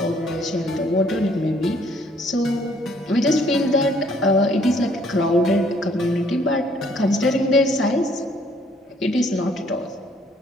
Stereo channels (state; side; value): normal; both; correlation 0.63